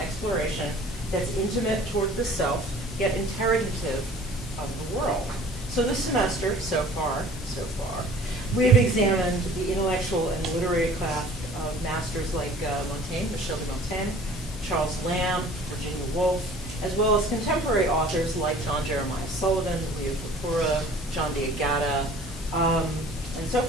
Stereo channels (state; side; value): normal; both; correlation 0.49